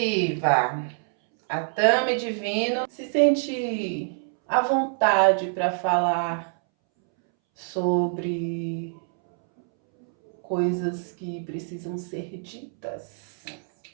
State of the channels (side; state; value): left; silent; 61 dB below the other